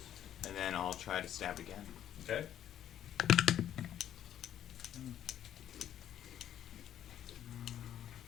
And then I'll try to stab again. Okay?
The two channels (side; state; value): right; quieter; 10.8 dB